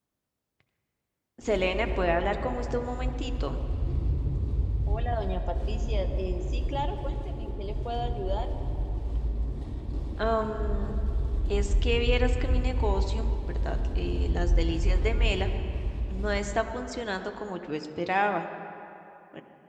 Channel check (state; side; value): identical; both; correlation 1.00